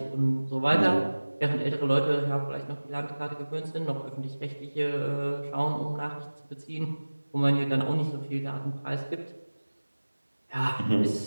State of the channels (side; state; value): both; inverted; correlation -1.00